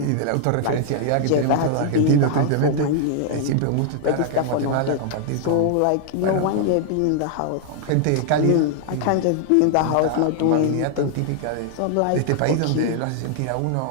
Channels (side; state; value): both; different; correlation -0.01